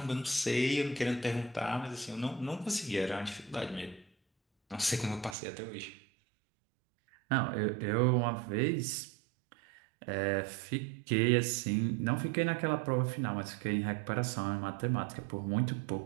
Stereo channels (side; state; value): left; drops out; at 5.4 s